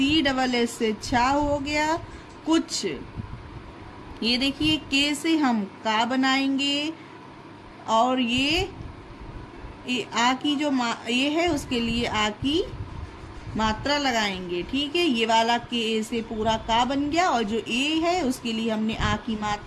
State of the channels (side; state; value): both; identical; correlation 1.00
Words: डबल एस से छा हो गया। कुछ, ये देखिए के से हम का बनाएंगे और ये आ की जो ये है उसके लिए आ की मात्रा लगाएंगे। ठीक है, ये वाला के ए से पूरा का बन गया और जो ए है उसके लिए हमने आ की